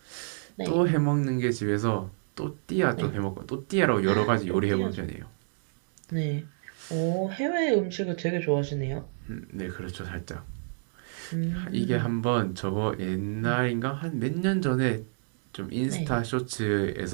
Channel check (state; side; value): silent; left; digital silence